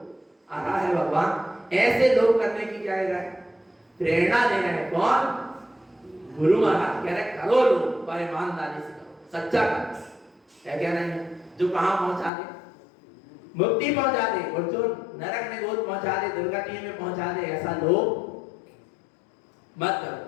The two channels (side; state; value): right; drops out; at 12.3 s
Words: आ रहा है भगवान? ऐसे लोभ करने की क्या है? प्रेरणा दे रहे हैं। कौन? गुरु महाराज कह रहे करो लोभ, पर ईमानदारी से करो, सच्चा करो। क्या कहना है? जो कहां पहुंचा दे? मुक्ति पहुंचा दे, और जो नरक में गोद पहुंचा दे, दुर्गति में पहुंचा दे, ऐसा लोभ मत